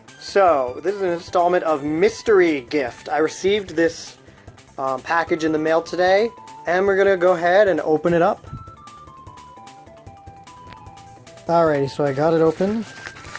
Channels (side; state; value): both; identical; correlation 1.00